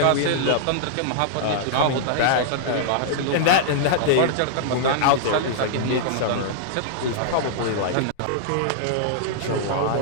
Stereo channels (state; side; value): different; both; correlation -0.01